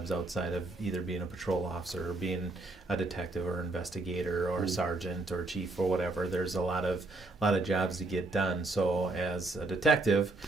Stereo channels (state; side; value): quieter; left; 3.1 dB